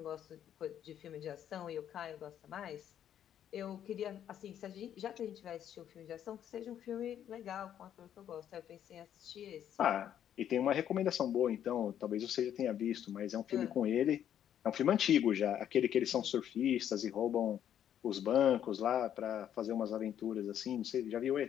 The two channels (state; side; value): quieter; right; 10.0 dB